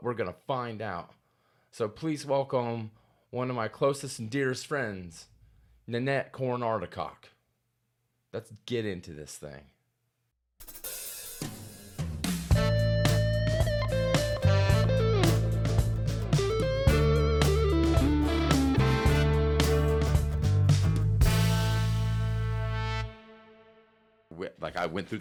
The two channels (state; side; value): identical; both; correlation 1.00